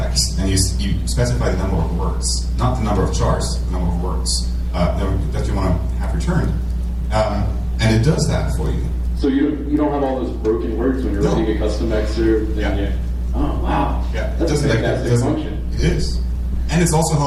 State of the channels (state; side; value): identical; both; correlation 1.00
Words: and you specify the number of words, not the number of chars, the number of words that you want to have returned. And it does that for you. So you don't have all those broken words when you're No. writing a custom excerpt. Yeah. And you, oh wow. Yeah, That's a fantastic function. It is. And it's also